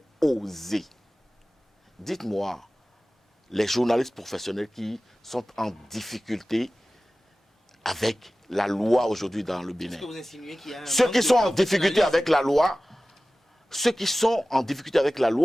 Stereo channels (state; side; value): normal; both; correlation 0.97